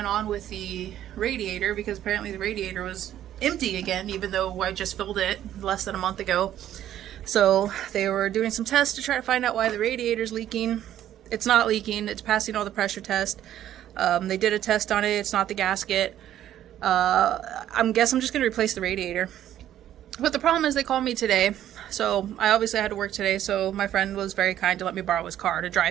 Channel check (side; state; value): left; quieter; 11.7 dB